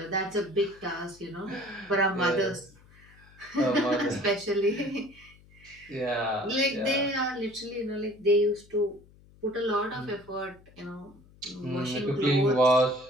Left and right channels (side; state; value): left; noise; hum, 26 dB below the sound